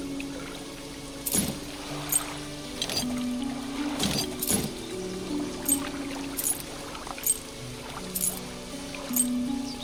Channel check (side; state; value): both; identical; correlation 1.00